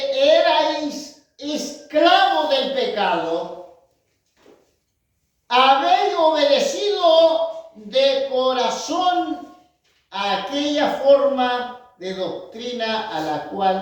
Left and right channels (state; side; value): identical; both; correlation 1.00